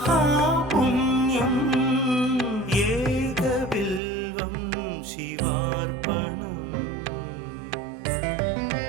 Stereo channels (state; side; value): drops out; left; at 4.0 s